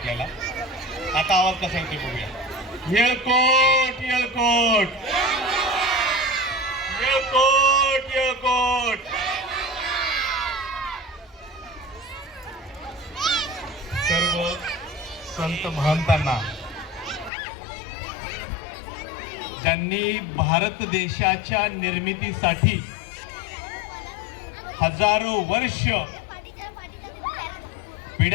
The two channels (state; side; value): drops out; right; at 17.3 s